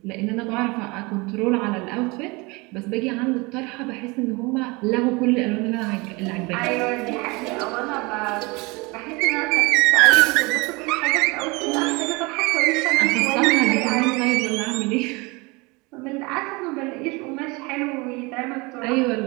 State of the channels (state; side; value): quieter; left; 25.8 dB